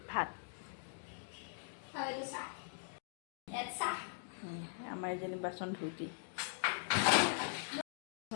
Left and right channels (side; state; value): right; silent; digital silence